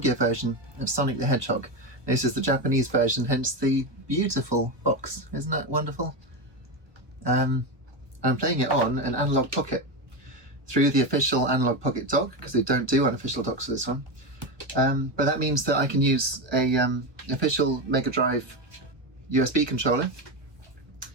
version of Sonic the Hedgehog. This is the Japanese version, hence the beautiful box. Isn't that wonderful? I'm playing it on an Analogue Pocket through the official Analogue Pocket Dock, because they don't do unofficial docks for this one. But that means that I can use a official Mega Drive USB controller.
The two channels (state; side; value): late; left; 1.2 ms